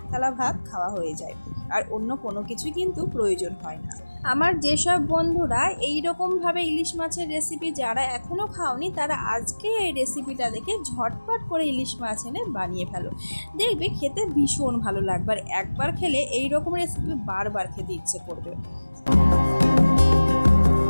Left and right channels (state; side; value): inverted; both; correlation -1.00